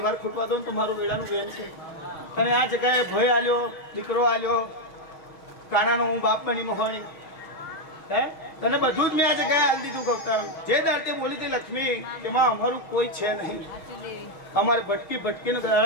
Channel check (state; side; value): late; right; 6.2 ms